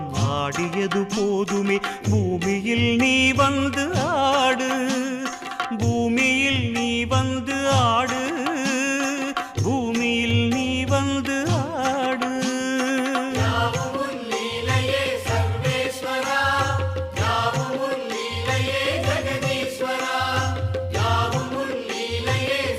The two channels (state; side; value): identical; both; correlation 1.00